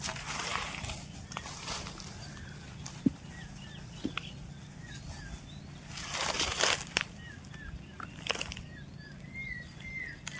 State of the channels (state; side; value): identical; both; correlation 1.00